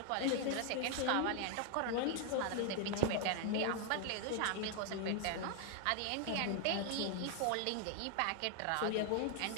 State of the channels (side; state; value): both; different; correlation 0.00